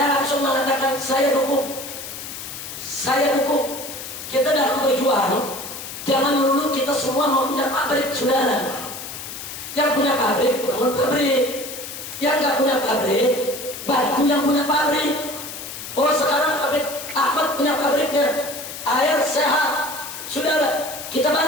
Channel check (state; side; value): noise; left; hiss, 10 dB below the sound